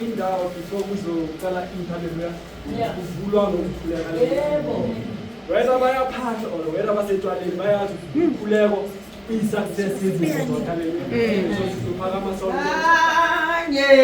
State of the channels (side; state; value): both; identical; correlation 1.00